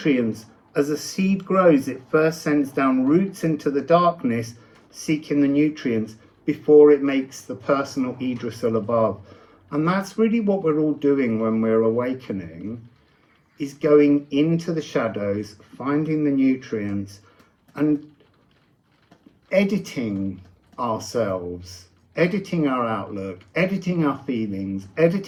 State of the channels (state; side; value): identical; both; correlation 1.00